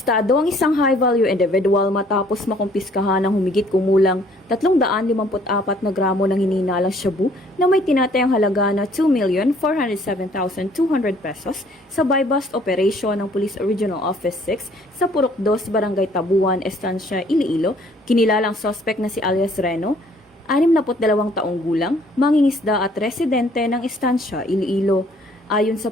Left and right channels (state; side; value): normal; both; correlation 0.60